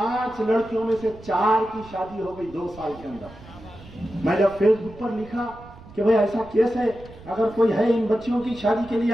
लड़कियों में से 4 की शादी हो गई 2 साल के अंदर। मैं जब फेसबुक पर लिखा कि भाई ऐसा केस है, अगर कोई है इन बच्चियों की शादी के लिए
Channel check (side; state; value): right; noise; rumble, 20 dB below the sound